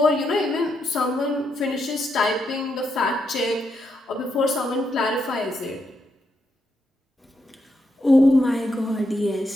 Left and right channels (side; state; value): both; normal; correlation 0.81